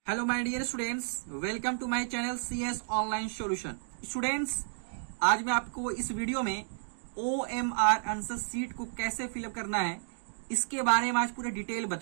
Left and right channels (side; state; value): left; silent; digital silence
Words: Hello my dear students, welcome to my channel CS online solution. Students, आज मैं आपको इस वीडियो में OMR आंसर शीट को कैसे फिलअप करना है इसके बारे में आज पूरा डिटेल